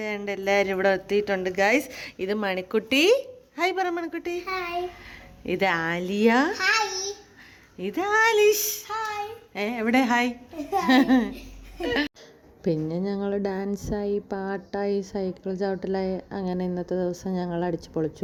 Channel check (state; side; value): identical; both; correlation 1.00